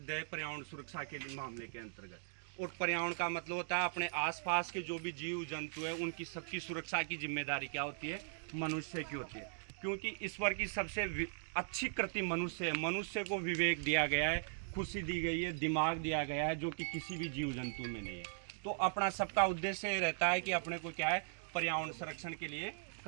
है पर्यावरण सुरक्षा के मामले के अंतर्गत। और पर्यावरण का मतलब होता है अपने आसपास के जो भी जीव जंतु है उनकी सबकी सुरक्षा की जिम्मेदारी क्या होती है? मनुष्य की होती है। क्योंकि ईश्वर की सबसे अच्छी कृति मनुष्य है। मनुष्य को विवेक दिया गया है, खुशी दी गई है, दिमाग दिया गया है, जो कि किसी भी जीव जंतु में नहीं है। तो अपना सबका उद्देश्य रहता है कि अपने को क्या है, पर्यावरण संरक्षण के लिए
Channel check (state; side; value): silent; left; digital silence